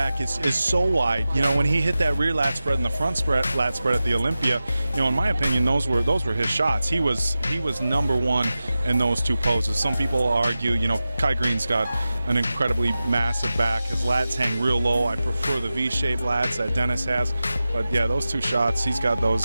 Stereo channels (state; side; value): inverted; both; correlation -0.94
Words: is so wide. When he hit that rear lat spread and the front lat spread at the Olympia, in my opinion, those were his shots. He was number one in those two poses. Some people argue, Kai Green's got an incredibly massive back. His lats hang real low. I prefer the V-shaped lats that Dennis has. But yeah, those two shots, he's got those